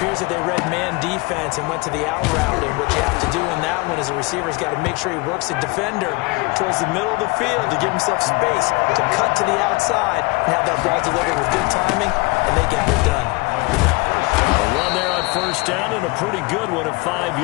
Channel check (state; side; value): quieter; right; 25.6 dB